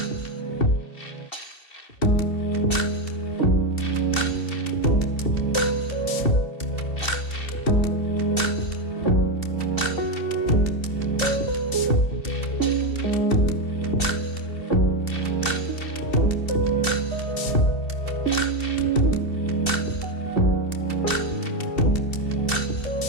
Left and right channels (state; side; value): late; right; 2.7 ms